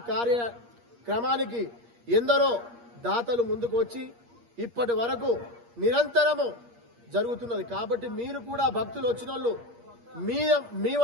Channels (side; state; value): left; late; 8.5 ms